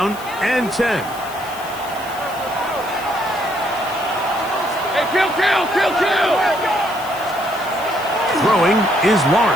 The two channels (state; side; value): noise; left; hiss, 17 dB below the sound